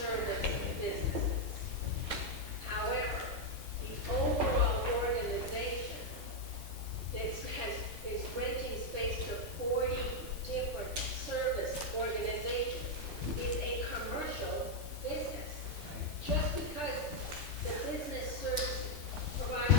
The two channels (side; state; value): both; normal; correlation 0.00